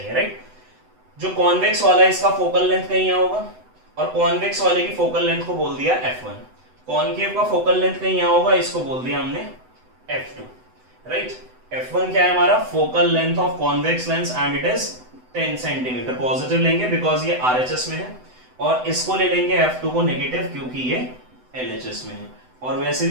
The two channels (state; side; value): late; left; 7.9 ms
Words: राइट। जो कॉन्वेक्स वाला है इसका फोकल लेंथ कहीं यहाँ होगा, और कॉन्वेक्स वाले की फोकल लेंथ को बोल दिया f1। कॉनकेव का फोकल लेंथ कहीं यहाँ होगा, इसको बोल दिया हमने f2, राइट। f1 क्या है हमारा, focal length of convex lens and it is 10 centimetre. Positive लेंगे बिकॉज ये RHS में है, और इसको ले लेंगे f2 को नेगेटिव क्योंकि ये LHS में है। और वैसे